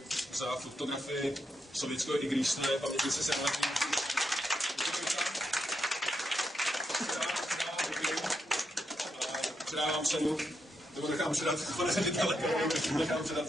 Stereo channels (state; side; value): normal; both; correlation 0.83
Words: za fotografii sovětského igrýsne pamětnice senátní. Předávám cenu, nebo nechám předat, pane ředitele, nechám